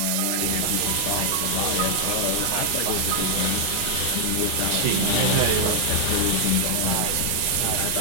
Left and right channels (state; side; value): different; both; correlation 0.00